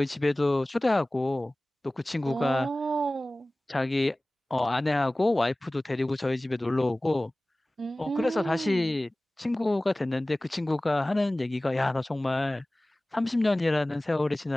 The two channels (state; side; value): normal; both; correlation 0.98